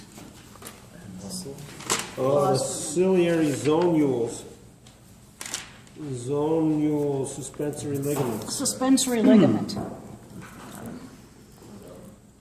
Oh, the ciliary zonules. Zonule suspensory ligaments. Suspensory ligament.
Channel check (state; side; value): identical; both; correlation 1.00